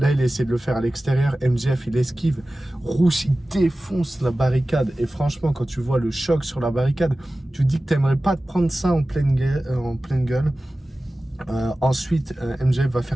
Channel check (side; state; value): both; normal; correlation 0.96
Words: il essaie de le faire à l'extérieur. MJF, il esquive. Rush, il défonce la barricade. Et franchement, quand tu vois le choc sur la barricade, tu te dis que t'aimerais pas te prendre ça en pleine gueule. Ensuite, MJF va